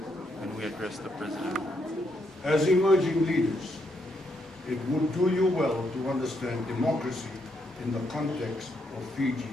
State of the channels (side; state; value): both; normal; correlation 0.77